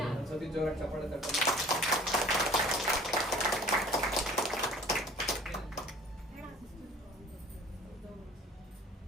ಒಂದ್ಸತಿ ಜೋರಾಗಿ ಚಪ್ಪಾಳೆ ತಟ್ಟಿ.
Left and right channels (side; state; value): both; normal; correlation 0.48